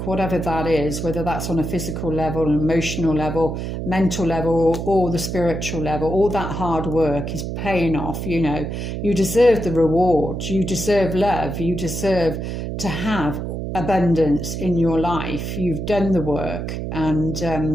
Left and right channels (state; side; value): noise; right; hum, 4 dB below the sound